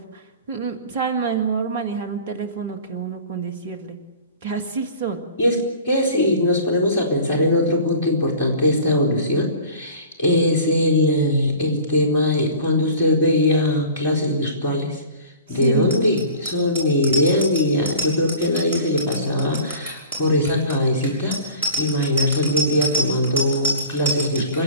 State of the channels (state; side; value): inverted; both; correlation -0.43